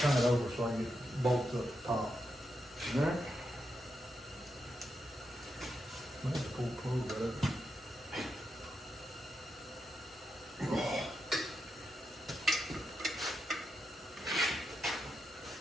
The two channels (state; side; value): normal; both; correlation 0.85